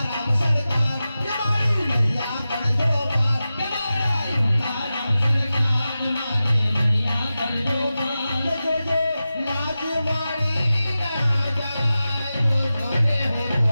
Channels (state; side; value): inverted; both; correlation -0.94